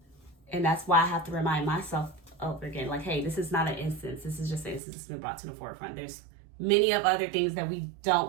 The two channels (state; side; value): drops out; left; at 4.8 s